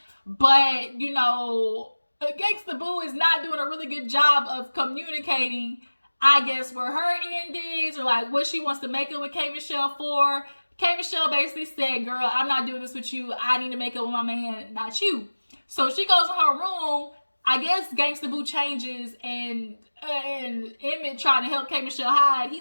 But, you know, Gangsta Boo is not doing a really good job of communicating, I guess, where her end is, or like what she wants to make up with K. Michelle for. K. Michelle basically said, girl, I'm not doing this with you. I need to make up with my man, not you. So she goes in her room. I guess Gangsta Boo changes, and Emmett trying to help K. Michelle hide. He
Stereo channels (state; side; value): inverted; both; correlation -1.00